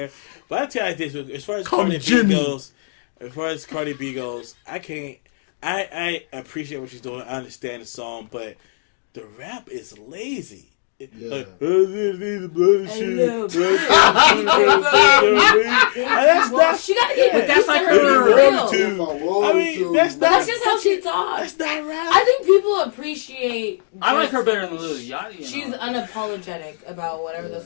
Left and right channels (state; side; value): silent; right; digital silence